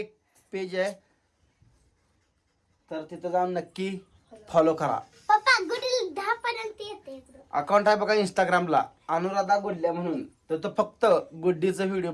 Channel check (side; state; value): both; identical; correlation 1.00